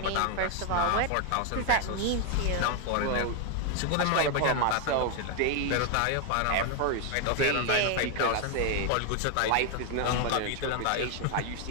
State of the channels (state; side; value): different; both; correlation 0.01